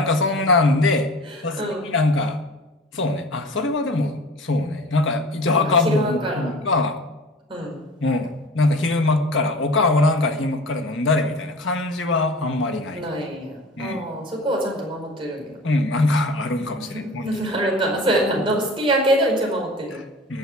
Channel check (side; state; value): both; normal; correlation 0.40